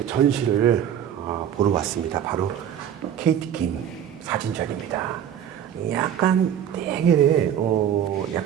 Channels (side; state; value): left; quieter; 9.6 dB